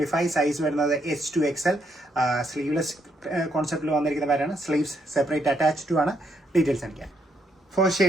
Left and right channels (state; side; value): normal; both; correlation 0.75